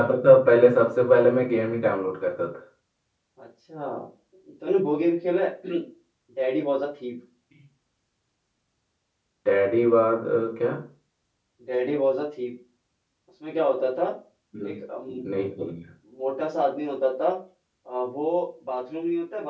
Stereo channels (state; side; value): identical; both; correlation 1.00